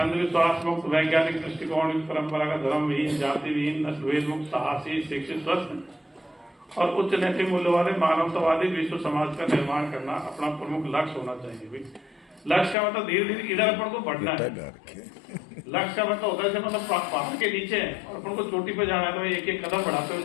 मुक्त, वैज्ञानिक दृष्टिकोण, परंपरागत धर्म विहीन, जाति विहीन, नस्लभेद मुक्त, साहसी, शिक्षित, स्वस्थ और उच्च नैतिक मूल्य वाले मानवतावादी विश्व समाज का निर्माण करना अपना प्रमुख लक्ष्य होना चाहिए। लक्ष्य का मतलब धीरे धीरे इधर अपन को बढ़ना है। लक्ष्य का मतलब होता है मतलब पहाड़ के नीचे है और अपन को चोटी पे जाना है, तो एक एक कदम बढ़ाते हुए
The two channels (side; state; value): right; drops out; at 12.8 s